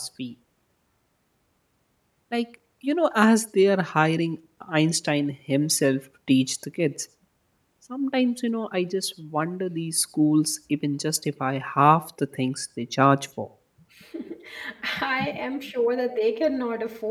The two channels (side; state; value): both; identical; correlation 1.00